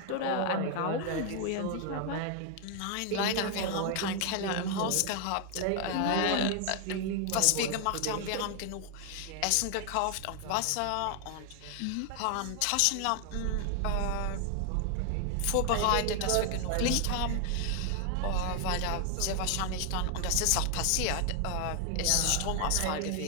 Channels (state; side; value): different; both; correlation 0.00